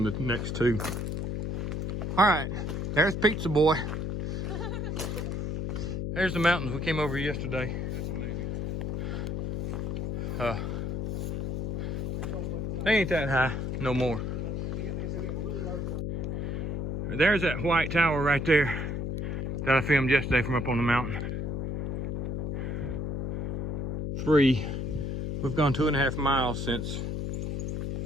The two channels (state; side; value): noise; left; hum, 2 dB below the sound